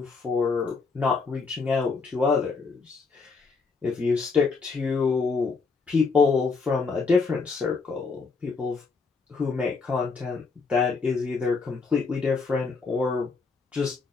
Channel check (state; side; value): quieter; right; 4.6 dB